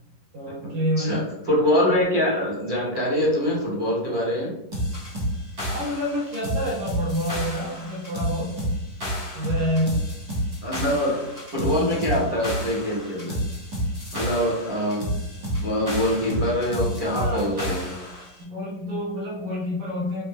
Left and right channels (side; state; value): left; late; 11 ms